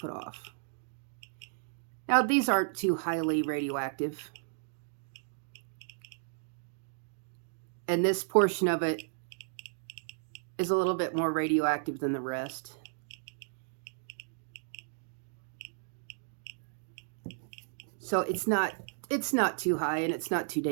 off. Now, these aren't too highly radioactive. And this portion of it is a little bit more radioactive than the rest. So it's not too high and it's not too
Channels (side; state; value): left; silent; digital silence